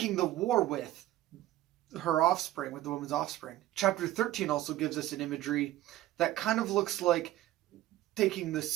the war with her offspring, with the woman's offspring. Chapter 13 also gives us an imagery that kind of looks like taking the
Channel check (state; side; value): quieter; left; 14.7 dB